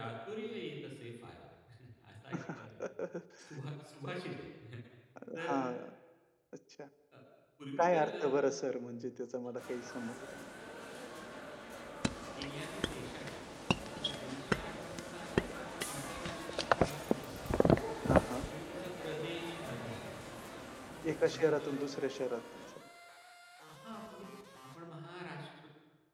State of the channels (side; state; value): both; identical; correlation 1.00